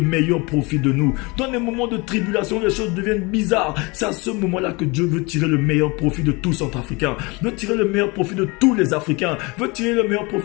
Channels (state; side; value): quieter; right; 26.6 dB